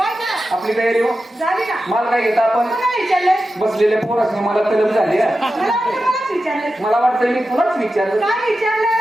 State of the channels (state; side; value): normal; both; correlation 0.92